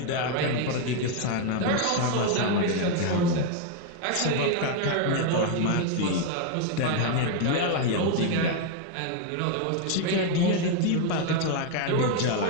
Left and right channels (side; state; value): both; different; correlation 0.01